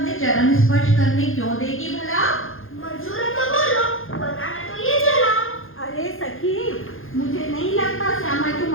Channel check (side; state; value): right; late; 0.60 ms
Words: चरण स्पर्श करने क्यों देगी भला? मंजूर है तो बोलो, वरना मैं तो ये चला। अरे सखी, मुझे नहीं लगता श्यामा तू